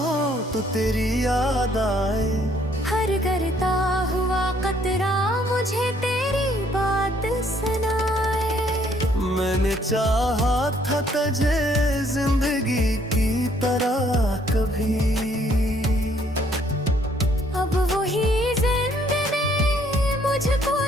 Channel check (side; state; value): both; normal; correlation 0.65